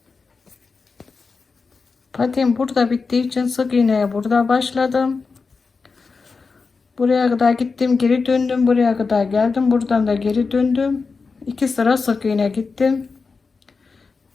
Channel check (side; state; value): right; quieter; 4.6 dB